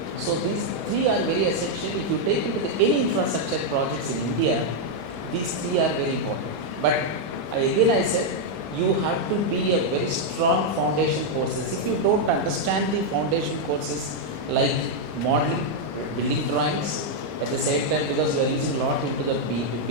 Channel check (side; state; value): both; normal; correlation -0.01